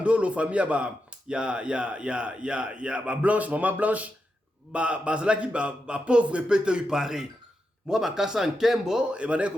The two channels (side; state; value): both; normal; correlation 0.87